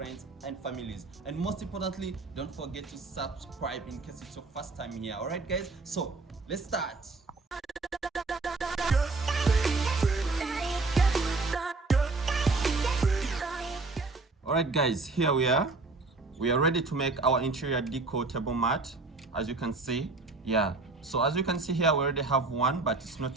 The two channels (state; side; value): quieter; left; 3.5 dB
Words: and families, and most importantly don't forget to subscribe in case it's your first time here. Alright guys, so let's start. Alright guys, here we are ready to make our interior decor table mat. As you can see, so as you can see here, we already have one, but it's